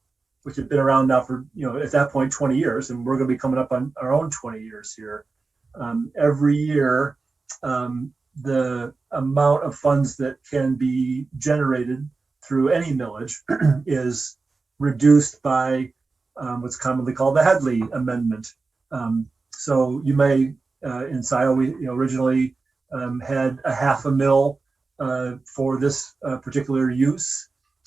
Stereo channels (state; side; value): quieter; left; 4.0 dB